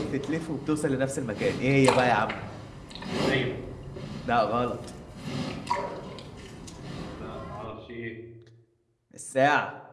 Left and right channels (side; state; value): both; identical; correlation 1.00